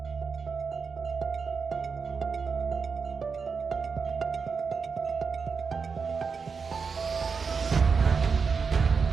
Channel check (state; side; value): quieter; left; 5.4 dB